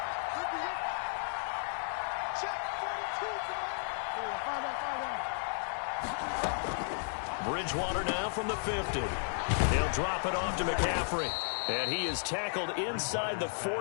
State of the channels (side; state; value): right; silent; digital silence